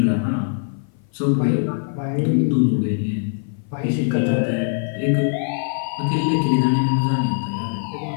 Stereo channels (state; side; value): silent; right; 56 dB below the other